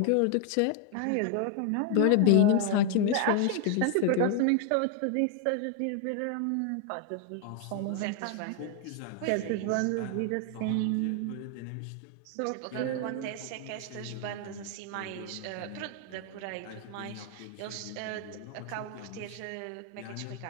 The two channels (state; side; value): different; both; correlation 0.00